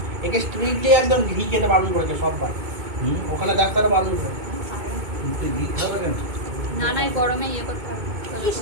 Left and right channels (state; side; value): late; left; 2.2 ms